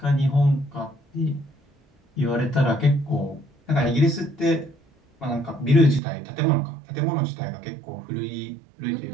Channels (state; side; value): drops out; left; at 6.0 s